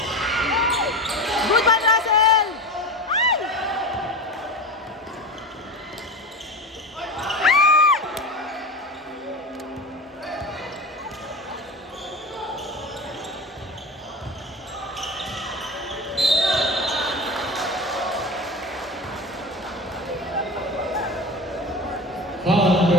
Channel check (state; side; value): normal; both; correlation 0.28